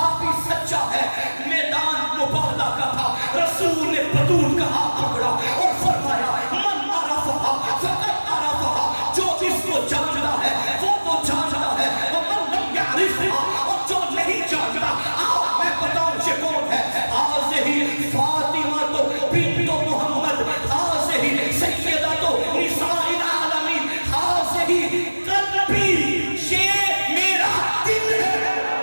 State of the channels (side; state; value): both; inverted; correlation -1.00